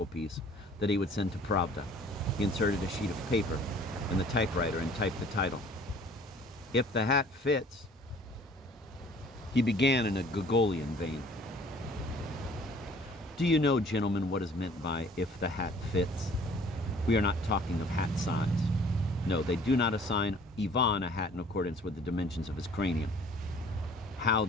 piece that he would send to Pravda. He inserted a sheet of paper in the typewriter and typed the title. "If the hat fits." He began in a Gogolian vein. "Do you know, gentlemen, what is meant by 'if the hat fits'? We are not talking of hat size. No, they do not assign Ivan a hat in accordance with the dimensions of his cranium. How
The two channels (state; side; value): normal; both; correlation 0.53